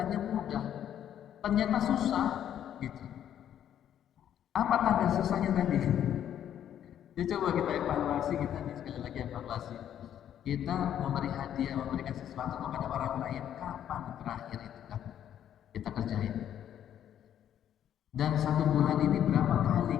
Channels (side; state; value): right; quieter; 10.3 dB